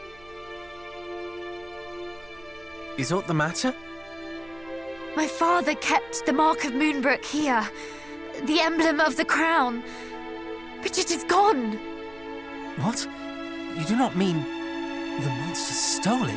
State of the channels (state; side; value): noise; right; hum, 25 dB below the sound